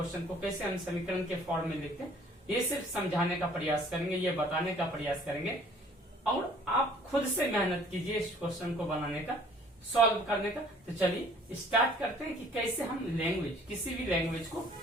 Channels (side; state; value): both; normal; correlation 0.55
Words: को कैसे हम समीकरण के फॉर्म में लिखते हैं। ये सिर्फ समझाने का प्रयास करेंगे, ये बताने का प्रयास करेंगे और आप खुद से मेहनत कीजिए इस क्वेश्चन को बनाने का, सॉल्व करने का। तो चलिए स्टार्ट करते हैं कि कैसे हम किसी भी लैंग्वेज को